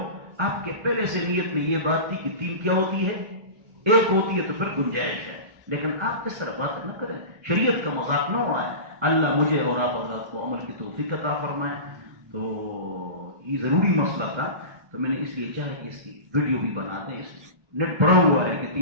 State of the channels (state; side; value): late; left; 1.3 ms